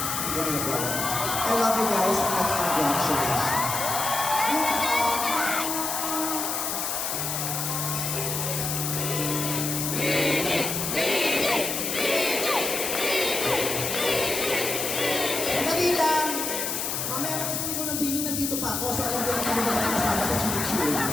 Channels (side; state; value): left; noise; hiss, 2 dB below the sound